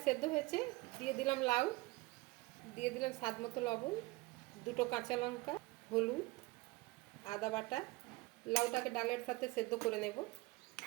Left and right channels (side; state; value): left; quieter; 21.9 dB